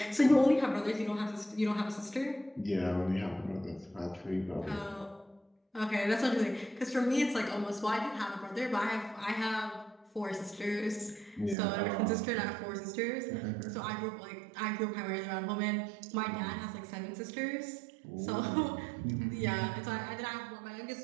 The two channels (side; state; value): left; drops out; at 11.6 s